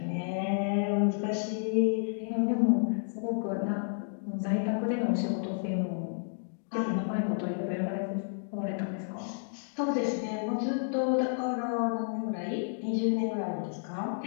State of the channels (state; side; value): silent; right; digital silence